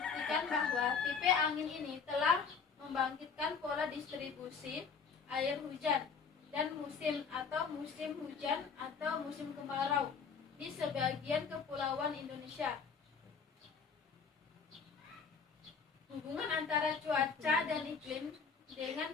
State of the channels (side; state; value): right; quieter; 5.7 dB